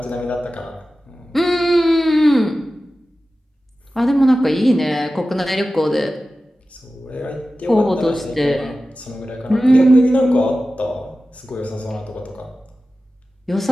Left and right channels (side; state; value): both; normal; correlation 0.95